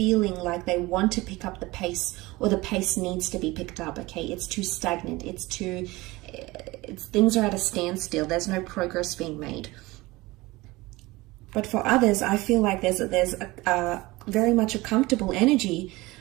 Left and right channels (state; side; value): quieter; left; 20.9 dB